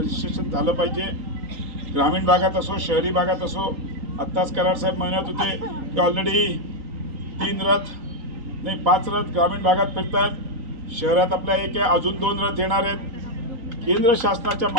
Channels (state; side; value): late; left; 3.9 ms